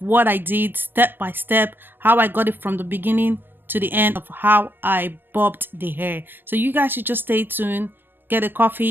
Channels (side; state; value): left; late; 0.092 ms